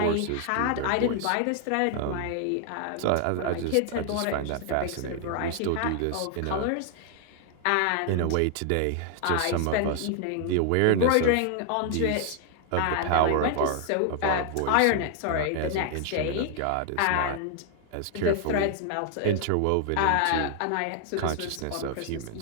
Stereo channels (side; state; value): both; different; correlation 0.00